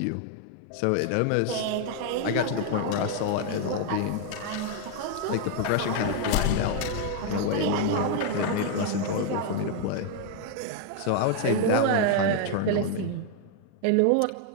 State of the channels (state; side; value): different; both; correlation 0.00